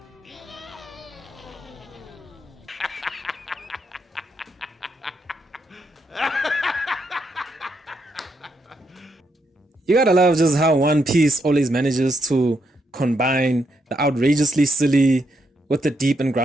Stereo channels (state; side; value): normal; both; correlation 0.79